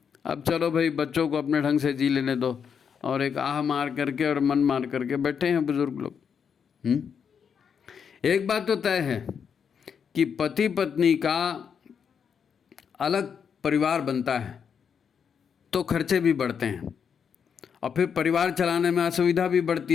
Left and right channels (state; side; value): quieter; right; 7.0 dB